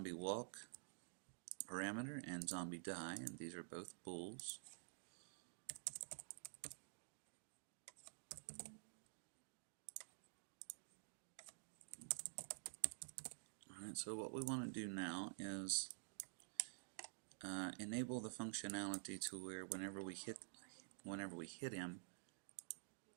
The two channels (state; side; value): silent; left; digital silence